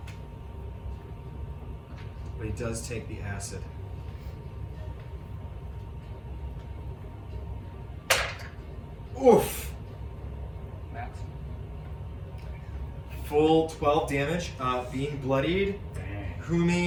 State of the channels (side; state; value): both; identical; correlation 1.00